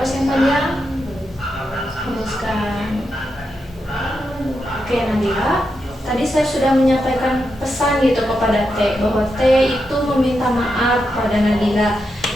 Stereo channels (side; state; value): both; normal; correlation 0.85